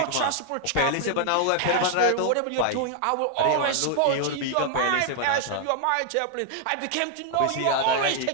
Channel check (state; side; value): different; both; correlation 0.00